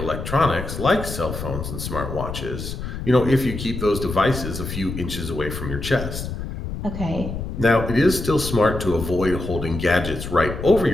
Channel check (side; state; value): left; noise; rumble, 6 dB below the sound